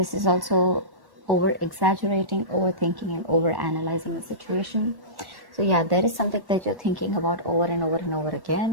is also over-exaggerating, overthinking, and over-analyzing the situation. So yeah, there is something that you're thinking about over and over and over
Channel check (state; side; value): late; left; 1.1 ms